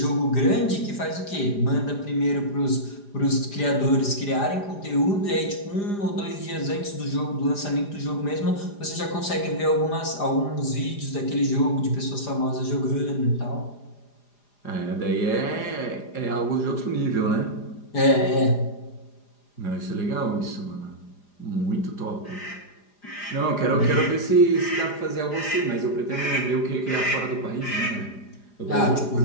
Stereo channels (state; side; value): late; right; 4.9 ms